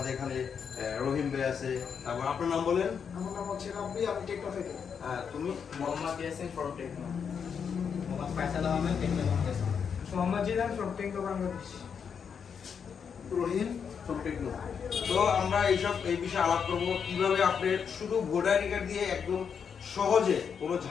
এখানে রহিম ভাই আছে, তারপর আপনার নাম বলেন। আমার নাম হচ্ছে রাব্বি, আমি টেকনো থেকে। হ্যাঁ, তুমি? Mohammad Yasin from Tecno. Mohammad Faisal Ahmed Tecno Bangladesh. Mohammad Jilan from Tecno Bangladesh. Rahim from Tecno. তো আমরা এই বিষয়ে আলাপ করবো, কিভাবে আপনি শুধু ভোটার আইডি কার্ড দিয়ে একদম সহজে কোনো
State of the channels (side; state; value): right; quieter; 6.9 dB